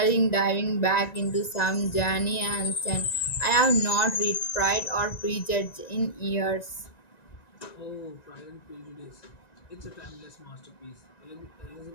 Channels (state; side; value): late; right; 1.9 ms